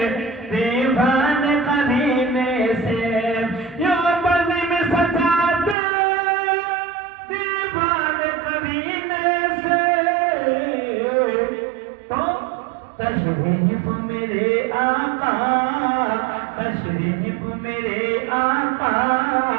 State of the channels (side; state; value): left; drops out; at 5.8 s